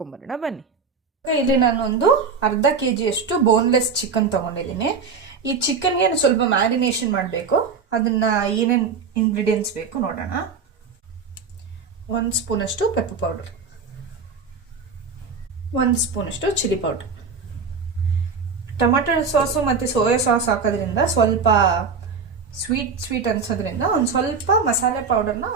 ಬನ್ನಿ. ಇಲ್ಲಿ ನಾನು ಒಂದು ಅರ್ಧ kg ಅಷ್ಟು ಬೋನ್ಲೆಸ್ ಚಿಕನ್ ತೊಗೊಂಡಿದ್ದೀನಿ. ಈ ಚಿಕನ್ಗೆ ಸ್ವಲ್ಪ ಮ್ಯಾರಿನೇಷನ್ ಮಾಡಬೇಕು. ಅದನ್ನು ಏನೇನು ಇಂಗ್ರೀಡಿಯೆಂಟ್ಸ್ ಬೇಕು ನೋಡೋಣ. 1 ಸ್ಪೂನಷ್ಟು ಪೆಪ್ಪರ್ ಪೌಡರ್, 1 ಸ್ಪೂನಷ್ಟು ಚಿಲ್ಲಿ ಪೌಡರ್. ಟೊಮೆಟೊ ಸಾಸು ಮತ್ತು ಸೋಯಾ ಸಾಸ್ ಹಾಕೋದ್ರಿಂದ ಸ್ವಲ್ಪ ಸ್ವೀಟ್ ಅನ್ಸೋದ್ರಿಂದ ಒಂದು ಸ್ವಲ್ಪ ಮಸಾಲೆ ಪೌಡರ್ನ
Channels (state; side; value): quieter; left; 5.2 dB